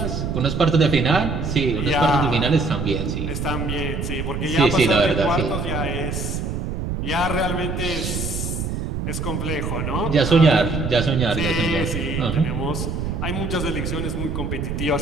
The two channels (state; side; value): noise; right; rumble, 3 dB below the sound